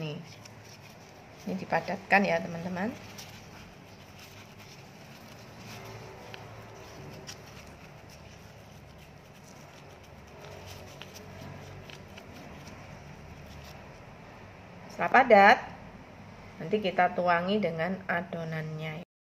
Ini dipadatkan ya teman-teman. Setelah padat, nanti kita tuangi dengan adonannya.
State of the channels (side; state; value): both; identical; correlation 1.00